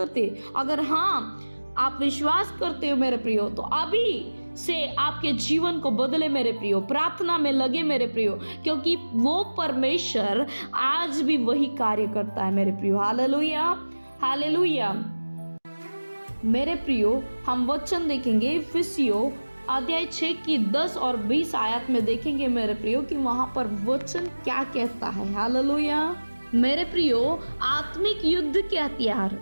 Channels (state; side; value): inverted; both; correlation -1.00